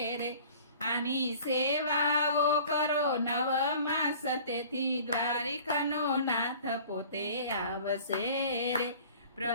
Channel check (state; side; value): inverted; both; correlation -0.47